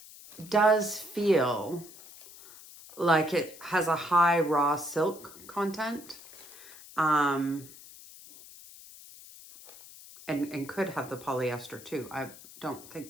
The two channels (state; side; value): noise; left; hiss, 18 dB below the sound